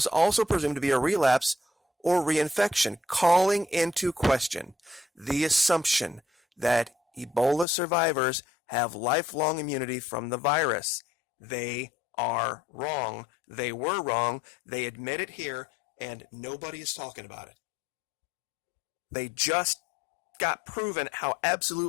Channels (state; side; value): drops out; right; at 7.7 s